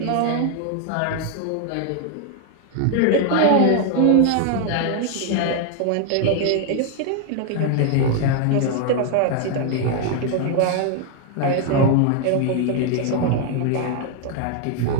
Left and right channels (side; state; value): both; different; correlation 0.00